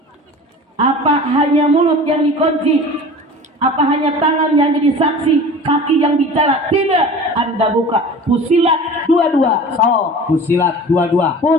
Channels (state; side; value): normal; both; correlation 0.39